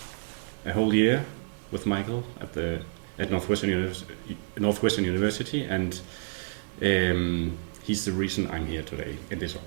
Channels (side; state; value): left; silent; digital silence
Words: whole year with Michael at Northwestern University, and he's the reason I'm here today in this